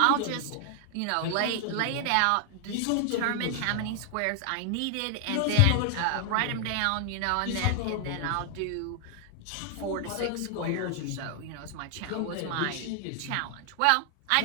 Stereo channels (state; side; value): different; both; correlation 0.00